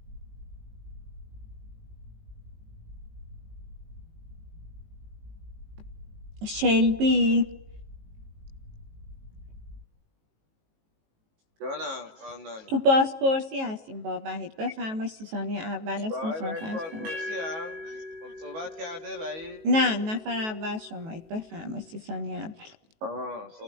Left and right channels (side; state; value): left; late; 19 ms